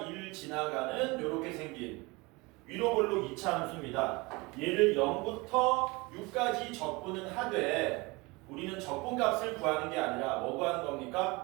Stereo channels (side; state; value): left; quieter; 24.9 dB